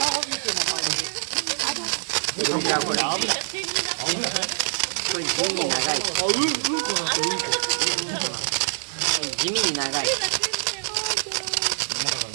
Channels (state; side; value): silent; left; digital silence